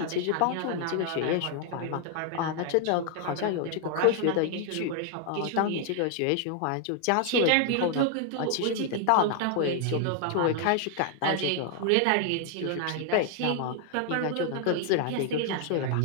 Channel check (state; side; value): different; both; correlation 0.00